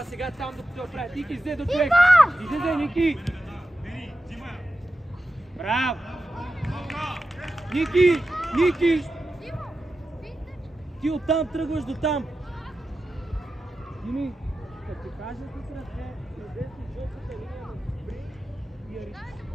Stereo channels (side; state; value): both; normal; correlation 0.92